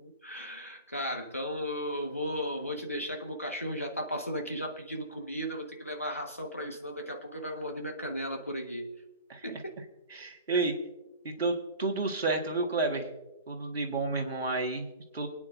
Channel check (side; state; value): both; inverted; correlation -0.38